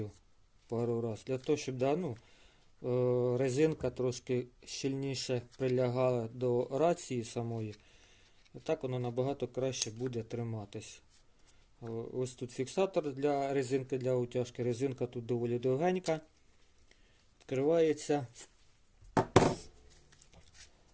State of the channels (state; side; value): identical; both; correlation 1.00